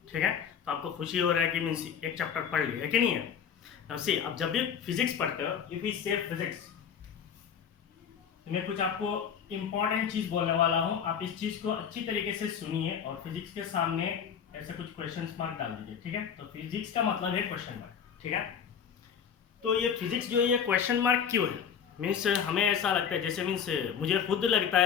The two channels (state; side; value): quieter; right; 7.6 dB